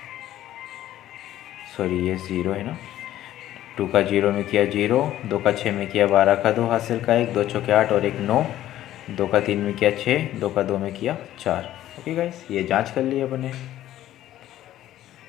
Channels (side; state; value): right; quieter; 13.3 dB